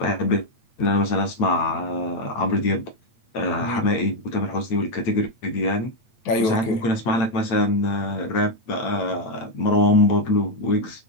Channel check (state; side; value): late; right; 8.8 ms